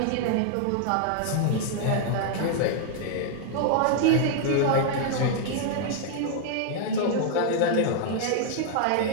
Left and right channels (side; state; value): both; different; correlation 0.00